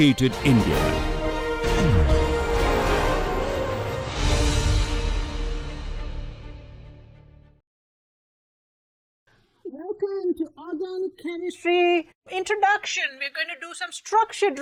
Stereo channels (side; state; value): both; identical; correlation 1.00